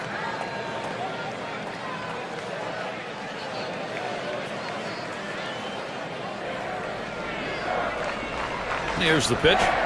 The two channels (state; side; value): identical; both; correlation 1.00